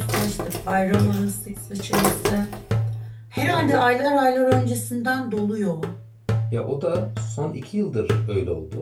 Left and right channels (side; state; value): both; identical; correlation 1.00